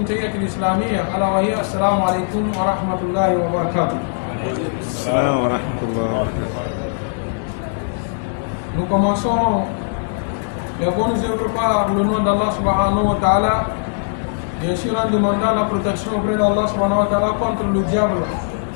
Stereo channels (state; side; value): silent; right; digital silence